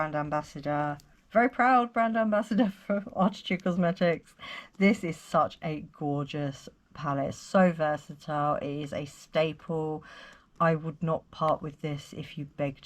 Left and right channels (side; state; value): both; identical; correlation 1.00